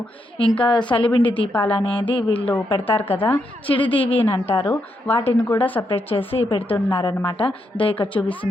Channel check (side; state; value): both; normal; correlation 0.80